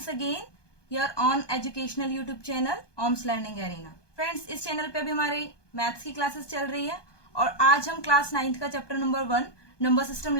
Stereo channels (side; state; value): right; late; 1.2 ms